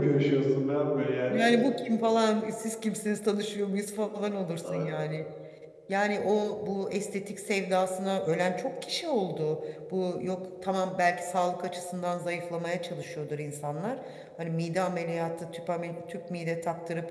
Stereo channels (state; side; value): identical; both; correlation 1.00